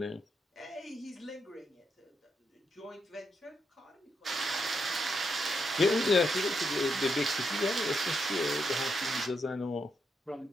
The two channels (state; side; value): normal; both; correlation 0.81